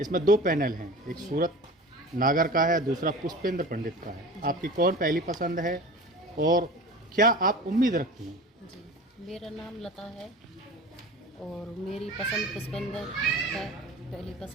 दो पैनल हैं, एक सूरत नागर का है, दूसरा पुष्पेंद्र पंडित का है। आपकी कौन पहली पसंद है और क्या आप उम्मीद रखती हैं? मेरा नाम लता है और मेरी पसंद पुष्पेंद्र है, पहली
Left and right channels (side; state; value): both; normal; correlation 0.37